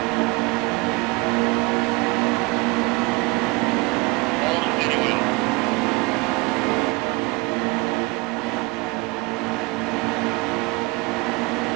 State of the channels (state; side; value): quieter; left; 25.8 dB